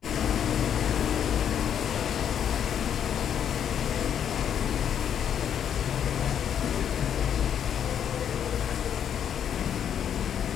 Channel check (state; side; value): quieter; right; 8.9 dB